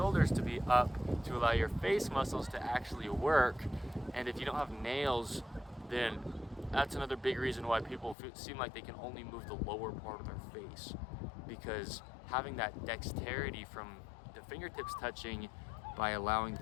to be up, to allow your face muscles to actually work. And if you don't have nails, then that's another big reason why people seem like they can only move the lower part of their face, because having that dexterity from the fingertips touching by allowing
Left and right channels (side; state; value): right; drops out; at 8.2 s